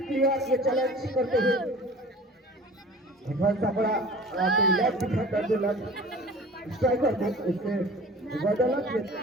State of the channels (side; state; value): both; normal; correlation 0.43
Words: क्लियर ये चैलेंज करते हुए सा बड़ा लेफ्ट डिफेंडर जो लेफ्ट स्ट्राइकर थे उसने बदौलत ये